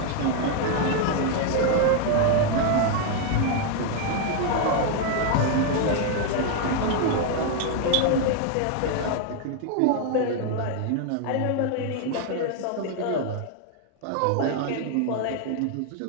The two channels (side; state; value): both; different; correlation 0.01